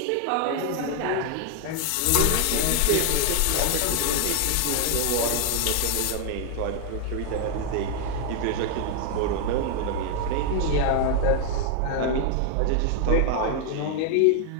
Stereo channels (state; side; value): different; both; correlation 0.00